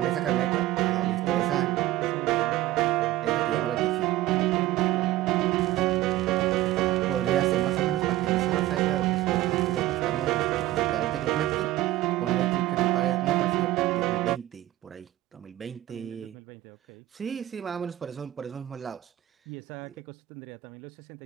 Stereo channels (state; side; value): quieter; left; 15.5 dB